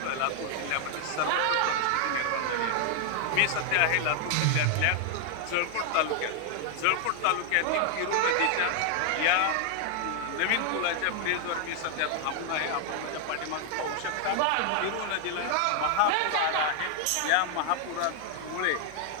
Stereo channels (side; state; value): both; different; correlation 0.00